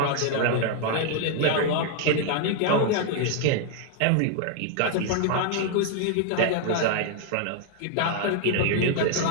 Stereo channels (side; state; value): both; different; correlation 0.00